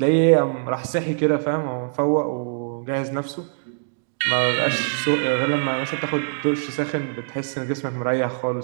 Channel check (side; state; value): left; silent; digital silence